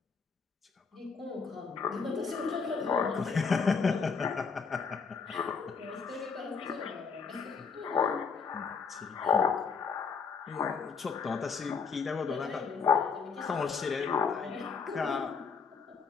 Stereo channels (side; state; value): right; quieter; 5.4 dB